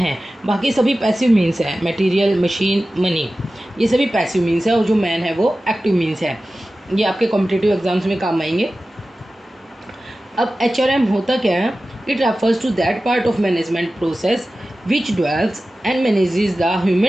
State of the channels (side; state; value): both; normal; correlation 0.95